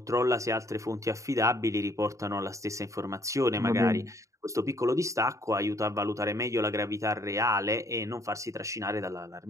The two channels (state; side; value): late; left; 0.15 ms